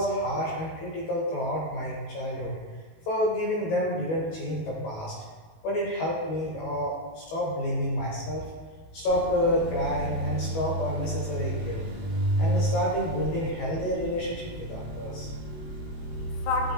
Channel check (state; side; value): late; right; 19 ms